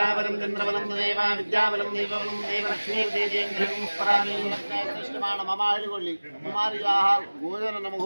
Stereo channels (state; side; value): inverted; both; correlation -1.00